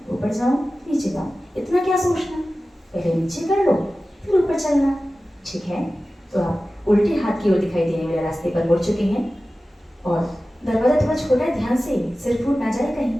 ऊपर जाऊं नीचे जाऊं, इतना क्या सोचना, पहले नीचे कर लो फिर ऊपर चलना। ठीक है, तो आप उल्टे हाथ की ओर दिखाई देने वाले रास्ते पर मुड़ चुके हैं और दरवाजा थोड़ा छोटा है, ध्यान से सिर फूट ना जाए कहीं।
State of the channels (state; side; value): normal; both; correlation 0.95